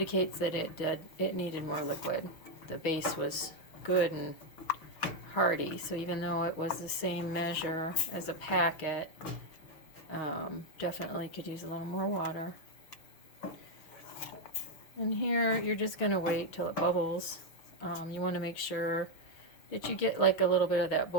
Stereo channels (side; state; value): right; late; 6.3 ms